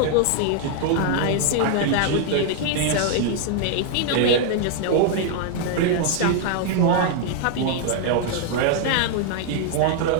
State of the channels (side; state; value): both; different; correlation 0.00